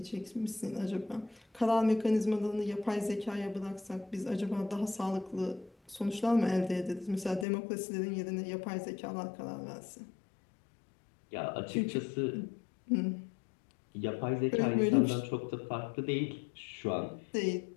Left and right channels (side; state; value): right; drops out; at 7.5 s